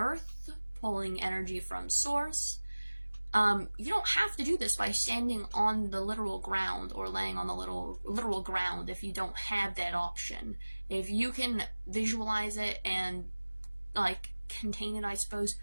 pulling energy from source, you don't have to do this by standing on the literal ground or laying on the literal ground if you don't have that option. If you can visualize it and like contain it, I suppose,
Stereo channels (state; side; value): inverted; both; correlation -1.00